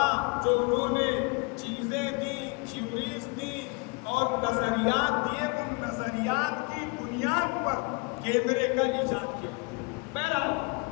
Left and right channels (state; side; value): quieter; right; 28.9 dB